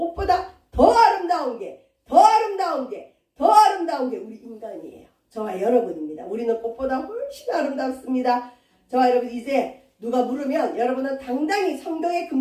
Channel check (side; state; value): both; identical; correlation 1.00